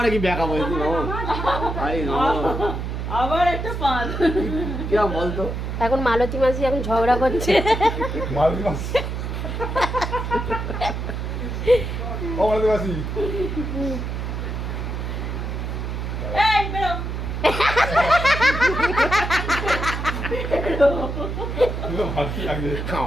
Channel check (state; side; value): noise; right; hum, 4 dB below the sound